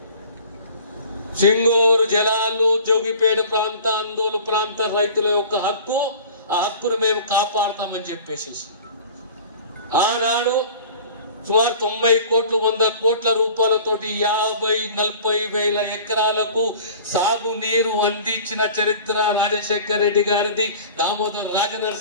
సింగూరు జలాలు, జోగిపేట ప్రాంత, అందోలు ప్రాంత రైతుల యొక్క హక్కు, ఆ హక్కును మేము కాపాడతామని చెప్పేసి ఆనాడు సుమారు 90 కోట్లు 100 కోట్ల రూపాయలతోటి 50-40 వేల ఎకరాలకు సాగునీరు అందించిన చరిత్ర రాజశేఖర్ రెడ్డి గారిది, దామోదర్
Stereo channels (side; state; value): both; inverted; correlation -0.43